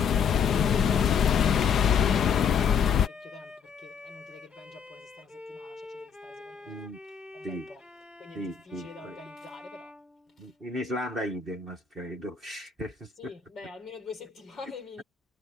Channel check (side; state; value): right; quieter; 7.0 dB